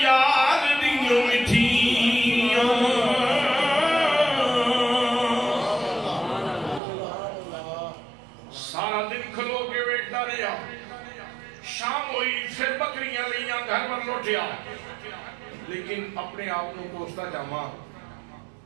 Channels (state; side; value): drops out; left; at 6.8 s